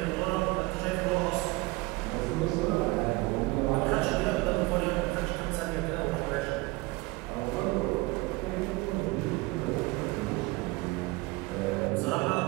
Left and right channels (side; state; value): left; quieter; 22.8 dB